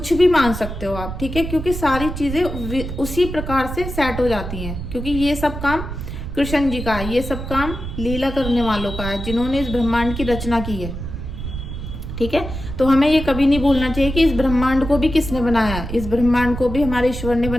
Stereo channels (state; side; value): noise; right; rumble, 7 dB below the sound